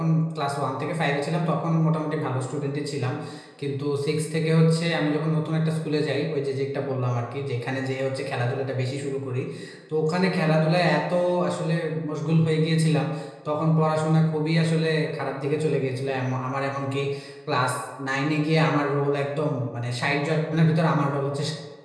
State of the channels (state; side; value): identical; both; correlation 1.00